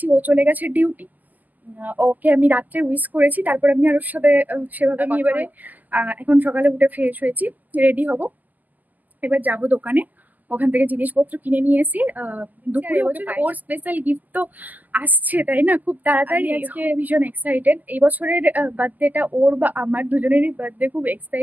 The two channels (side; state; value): left; late; 0.082 ms